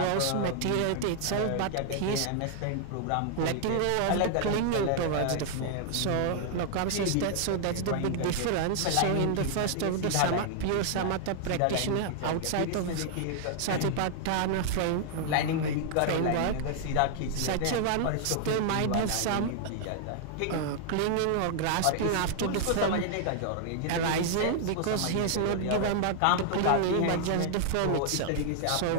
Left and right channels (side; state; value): both; different; correlation 0.00